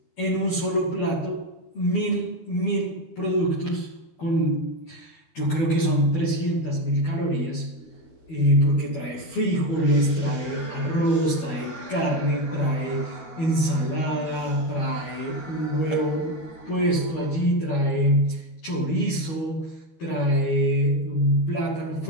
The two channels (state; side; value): late; right; 12 ms